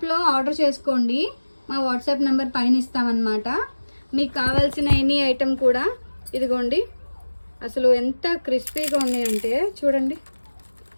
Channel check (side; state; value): both; inverted; correlation -1.00